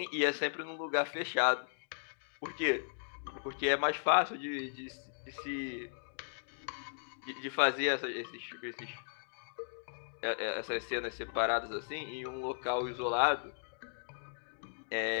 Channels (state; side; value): silent; right; digital silence